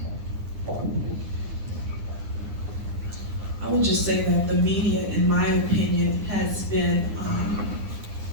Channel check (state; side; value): late; left; 9.8 ms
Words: I would just say that the media, in my opinion, has been